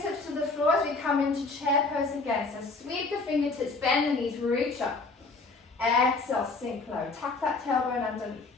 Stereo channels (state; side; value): quieter; right; 3.7 dB